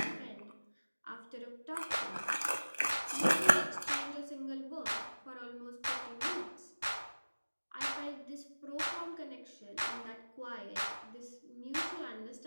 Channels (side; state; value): both; inverted; correlation -1.00